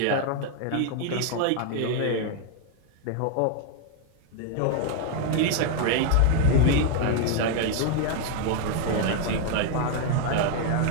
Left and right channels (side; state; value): both; different; correlation 0.01